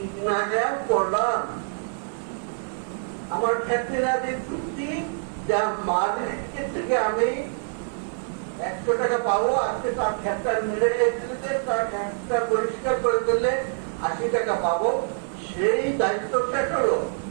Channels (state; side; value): silent; left; digital silence